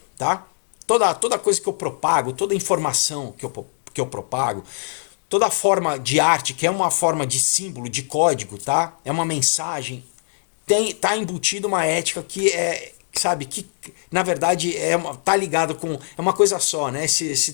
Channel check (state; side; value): silent; right; 64 dB below the other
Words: tá? Toda coisa que eu propago, toda informação que eu propago, toda forma de arte, que é uma forma de símbolo, de código, tá? É uma mensagem, tá embutido uma ética que é, sabe, que na verdade tá ligado com, é uma coisa só, né? Esse